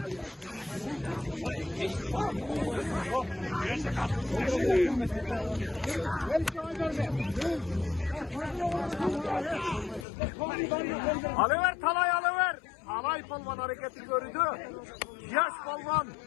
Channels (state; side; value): drops out; right; at 10.1 s